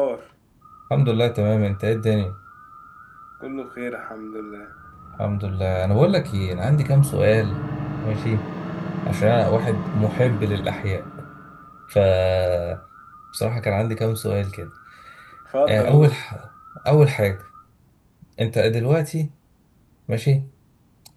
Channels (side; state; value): both; identical; correlation 1.00